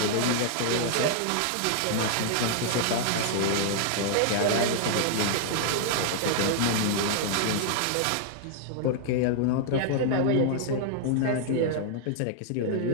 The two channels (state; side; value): different; both; correlation -0.01